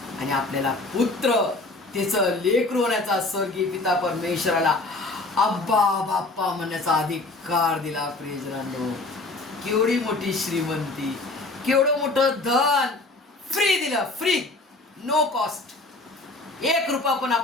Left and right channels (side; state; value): right; quieter; 3.1 dB